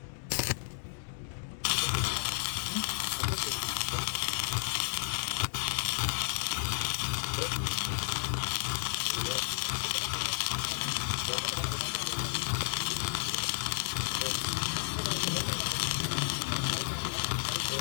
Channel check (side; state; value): right; silent; 56 dB below the other